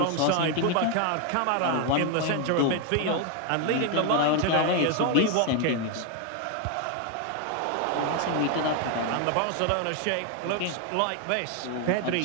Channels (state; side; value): different; both; correlation 0.01